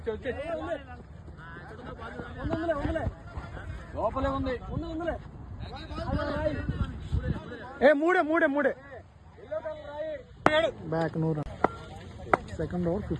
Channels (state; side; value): identical; both; correlation 1.00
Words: లోపలే ఉంది. మూడే back. No run. Second over